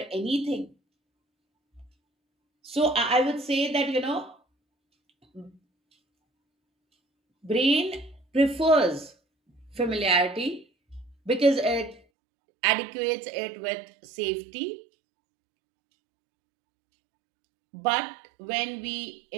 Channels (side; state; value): left; drops out; at 12.0 s